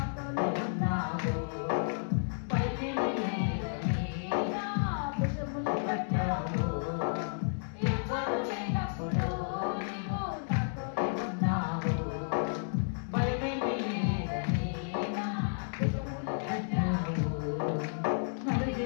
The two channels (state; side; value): silent; right; 56 dB below the other